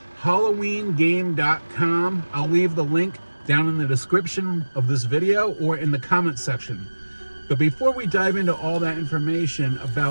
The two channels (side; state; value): both; inverted; correlation -1.00